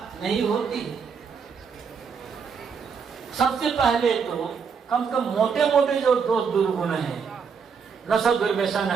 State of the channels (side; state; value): left; quieter; 6.1 dB